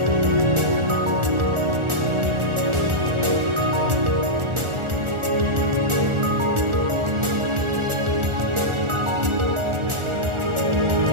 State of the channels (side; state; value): left; late; 1.4 ms